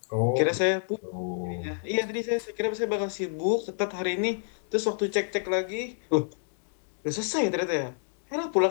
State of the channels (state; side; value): silent; right; digital silence